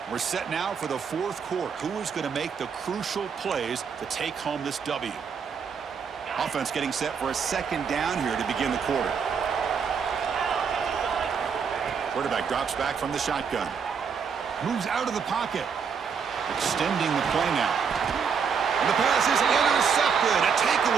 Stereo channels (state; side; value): quieter; left; 6.4 dB